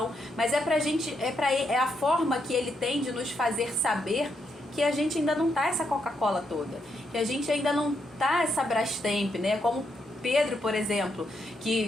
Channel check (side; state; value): both; normal; correlation 0.79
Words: mas é a forma que Ele tem de nos fazer saber que a gente ainda não tá essa Coca-Cola toda, que a gente ainda não tá essa Brastemp, né? Como Pedro, por exemplo,